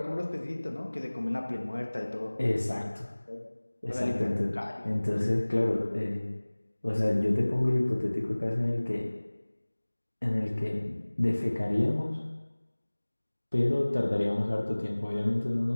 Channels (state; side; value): inverted; both; correlation -1.00